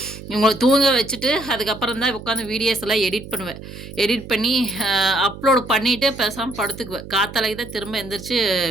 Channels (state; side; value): noise; right; hum, 13 dB below the sound